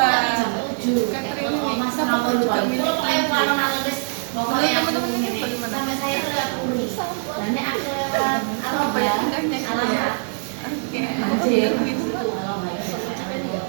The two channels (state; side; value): silent; left; digital silence